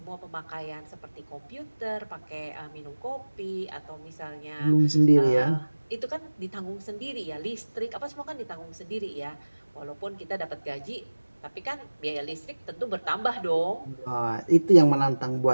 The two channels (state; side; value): inverted; both; correlation -1.00